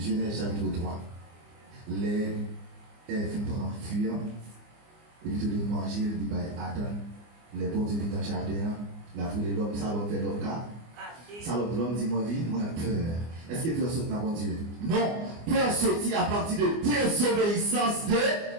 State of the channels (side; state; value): left; late; 24 ms